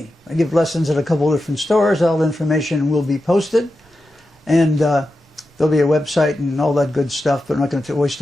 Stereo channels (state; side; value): normal; both; correlation 0.90